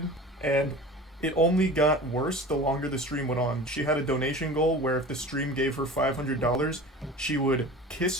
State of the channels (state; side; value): normal; both; correlation 0.37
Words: and it only got worse the longer the stream went on. She had a donation goal where if the stream gave her $500, she would